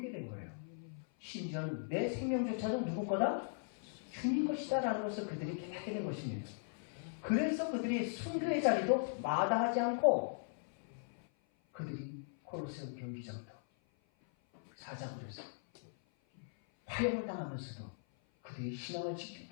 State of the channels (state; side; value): silent; right; 52 dB below the other